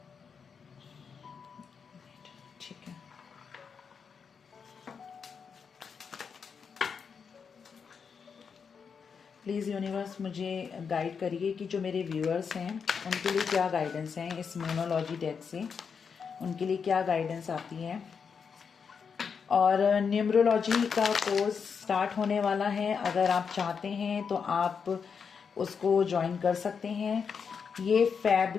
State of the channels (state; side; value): quieter; right; 6.2 dB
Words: ठीक है। प्लीज़ यूनिवर्स मुझे गाइड करिए कि जो मेरे व्यूअर्स हैं उनके लिए क्या गाइडेंस हैं इस मोनोलॉजी डेक से, उनके लिए क्या गाइडेंस आती है। और न्यूमरोलॉजी का कोर्स स्टार्ट होने वाला है, अगर आप चाहते हैं तो आप उसको ज्वाइन कर सकते हैं। ये फैब